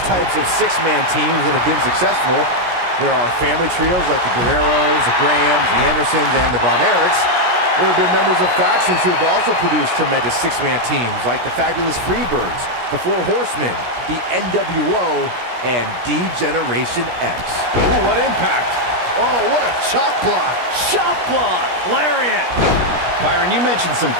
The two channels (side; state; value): left; late; 17 ms